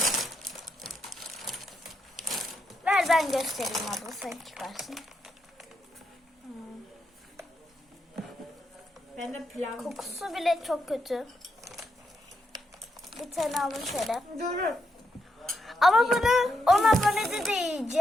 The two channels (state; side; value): normal; both; correlation 0.81